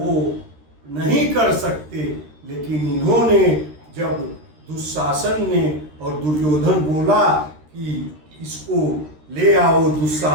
नहीं कर सकते। लेकिन इन्होंने जब दुशासन ने और दुर्योधन बोला कि इसको ले आओ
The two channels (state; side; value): late; left; 13 ms